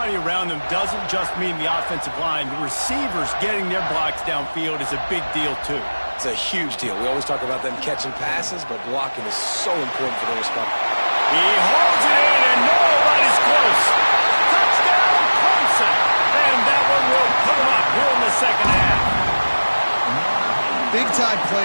around them doesn't just mean the offensive line. The receivers getting their blocks downfield is a big deal, too. It's a huge deal. We always talk about them catching passes, but blocking is so important for their response. He holds it in, and nobody's close. Touchdown, Clemson. And that one will put him up here in the second half. Big-time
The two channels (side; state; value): both; inverted; correlation -1.00